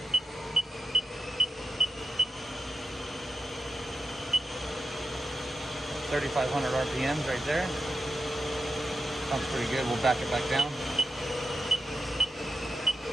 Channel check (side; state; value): both; normal; correlation 0.88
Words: $3,500 RPMs right there. Sounds pretty good. We'll back it back down.